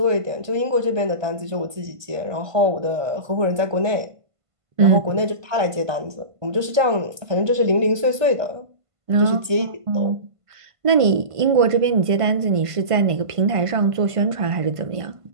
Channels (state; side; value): late; left; 1.5 ms